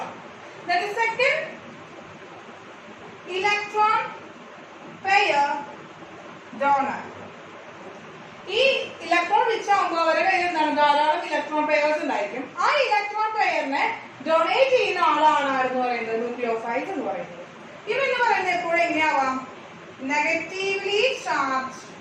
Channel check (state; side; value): identical; both; correlation 1.00